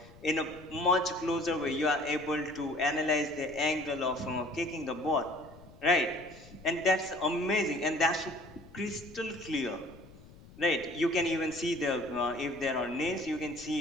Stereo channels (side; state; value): left; noise; rumble, 21 dB below the sound